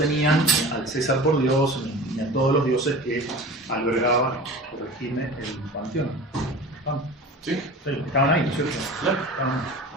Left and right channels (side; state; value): both; normal; correlation 0.36